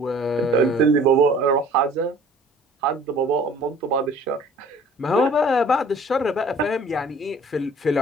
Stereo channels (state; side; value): normal; both; correlation 0.51